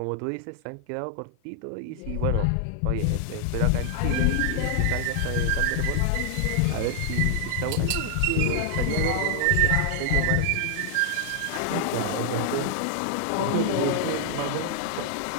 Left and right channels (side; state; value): both; different; correlation 0.00